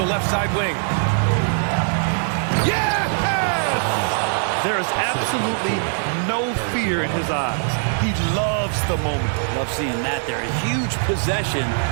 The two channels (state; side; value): silent; left; digital silence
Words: left side wing. Yes! There is absolutely no fear in his eyes. He loves the moment. Love seeing that there. A huge possession,